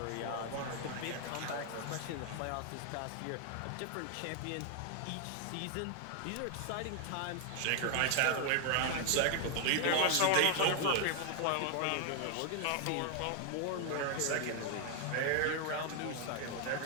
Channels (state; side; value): different; both; correlation 0.00